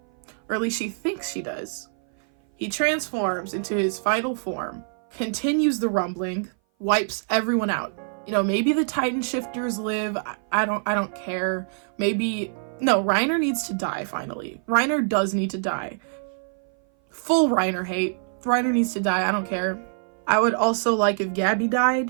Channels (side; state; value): left; silent; 58 dB below the other